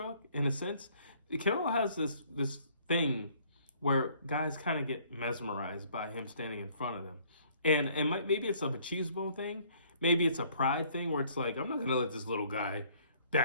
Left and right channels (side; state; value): both; inverted; correlation -0.60